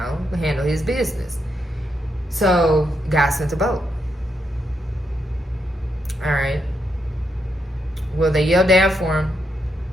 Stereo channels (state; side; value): normal; both; correlation 0.81